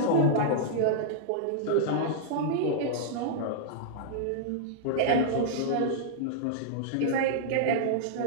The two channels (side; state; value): both; different; correlation -0.02